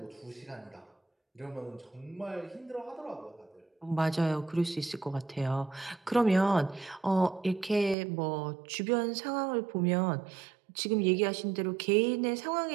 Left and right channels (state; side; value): drops out; left; at 8.0 s